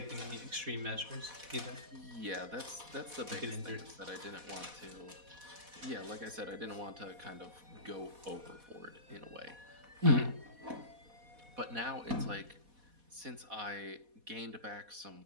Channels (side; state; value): left; late; 4.1 ms